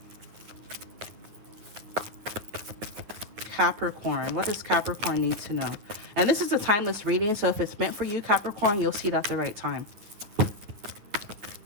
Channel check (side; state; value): left; late; 9.9 ms